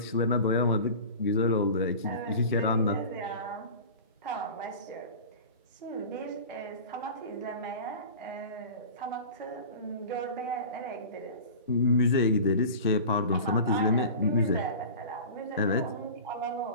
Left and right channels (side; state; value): both; inverted; correlation -0.36